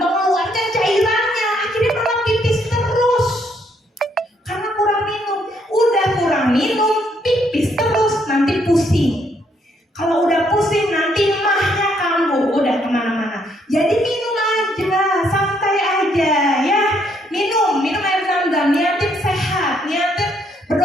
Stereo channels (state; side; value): normal; both; correlation 0.71